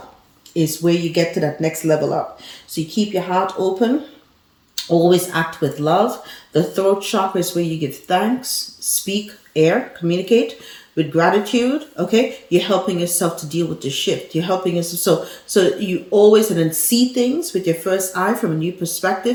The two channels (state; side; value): identical; both; correlation 1.00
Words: is where you get to that next level up. So you keep your heart open. Always act with love. The throat chakra is where you give thanks, speak, air, communicate with gratitude. Okay, you're helping yourself to deal with the shift. You're helping yourself. So you always and then see things with your first eye from a new